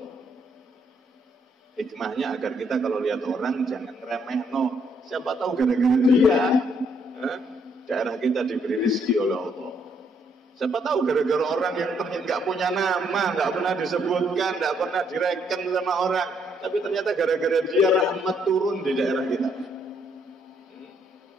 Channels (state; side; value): normal; both; correlation 0.71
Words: Hikmahnya agar kita kalau lihat orang jangan remeh, no. Siapa tahu gara-gara dia daerah kita diberi rezeki oleh Allah. Siapa tahu gara-gara orang yang ternyata nggak punya nama, nggak pernah disebutkan, nggak pernah direken sama orang, tapi ternyata gara-gara dia rahmat turun di daerah kita.